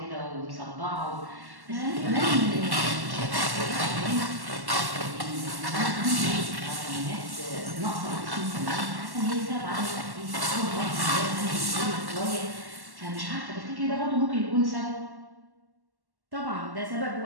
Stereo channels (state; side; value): late; left; 1.1 ms